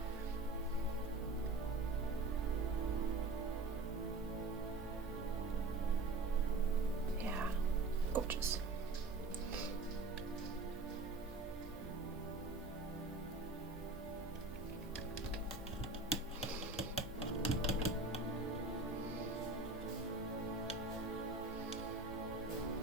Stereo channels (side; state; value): left; quieter; 3.2 dB